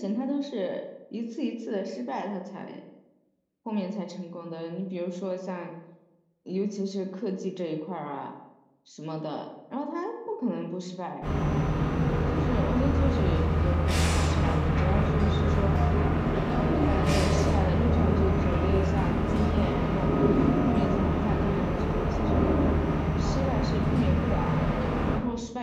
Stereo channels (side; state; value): both; identical; correlation 1.00